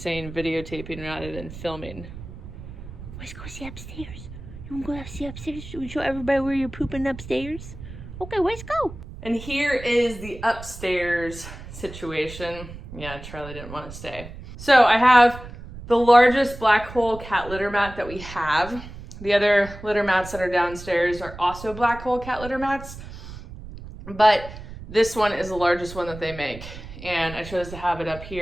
videotaping rather than filming. Let's go see upstairs. You want to go see upstairs? You show everybody where you're pooping upstairs? Okay, let's go. And here is the upstairs situation. Yeah, Charlie didn't want to stay. So I have the largest black hole cat litter mat that we have. The other litter mats that are downstairs are also black hole cat litter mats, but this one is the largest one that they make. And I chose to have it up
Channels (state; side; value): noise; right; rumble, 13 dB below the sound